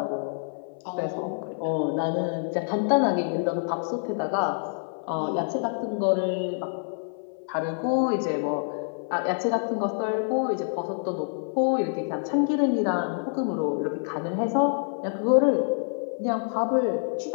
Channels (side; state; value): right; silent; 60 dB below the other